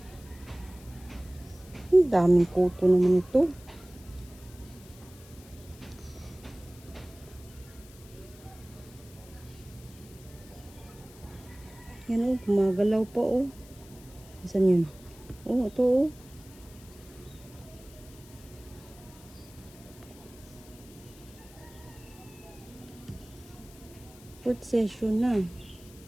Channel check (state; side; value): noise; left; hiss, 22 dB below the sound